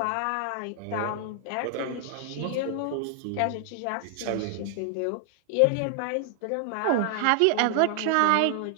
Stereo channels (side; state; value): both; different; correlation 0.00